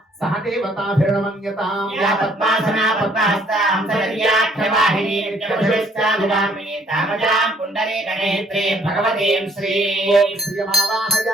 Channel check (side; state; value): both; normal; correlation 0.64